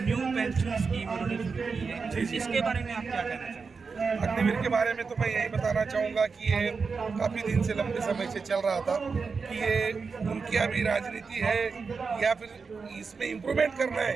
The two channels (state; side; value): quieter; left; 5.0 dB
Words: न्यू पेंशन स्कीम उन्होंने शुरू की है, इसके बारे में आप क्या कहना चाहेंगे? अग्निवीर के बारे में तो मैं यही बताना चाहूँगा कि ये काफ़ी दिन से, लंबे समय से चल रहा था कि ये उनकी अभी राजनीति है या फिर इसमें इम्प्रूवमेंट करना